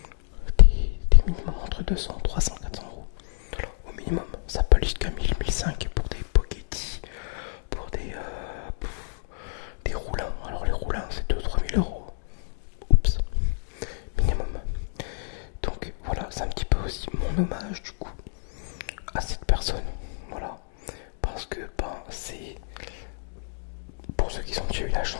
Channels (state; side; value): silent; right; digital silence